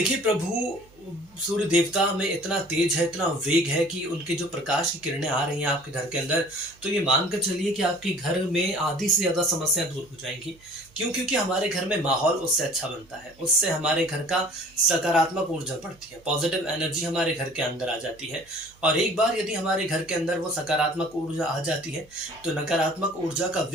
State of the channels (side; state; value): right; noise; hum, 28 dB below the sound